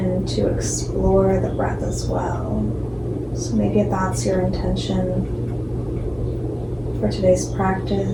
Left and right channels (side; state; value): both; identical; correlation 1.00